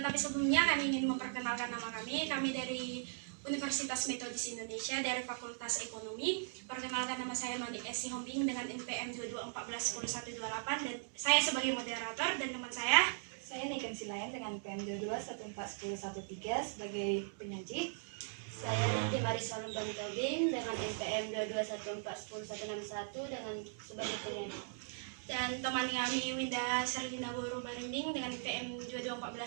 sebelumnya kami ingin memperkenalkan nama kami. Kami dari Universitas Metodis Indonesia dari Fakultas Ekonomi. Perkenalkan, nama saya Noni S. Sihombing dengan NPM 22141128 dan saya sebagai moderator, dan teman saya Niken Silayan dengan NPM 22141113 sebagai penyaji. Saya Niti Marisol Tobing dengan NPM 22141161 dengan sebagai penyaji. Dan teman kami Winda Serlina Boru Barimbing dengan NPM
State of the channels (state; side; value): silent; left; digital silence